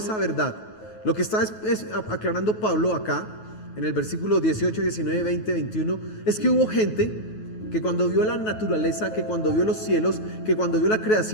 verdad. Lo que está es aclarando Pablo acá en el versículo 18, 19, 20, 21, es que hubo gente que cuando vio la naturaleza, que cuando vio los cielos, que cuando vio la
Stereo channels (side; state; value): right; late; 9.3 ms